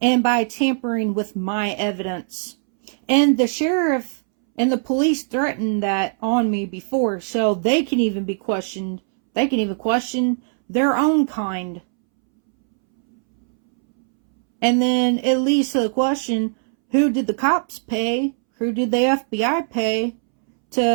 And by tampering with my evidence. And the sheriff and the police threatened that on me before, so they can even be questioned. They can even question their own kind. And then it leads to the question, who did the cops pay? Who did the FBI pay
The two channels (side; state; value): left; silent; 65 dB below the other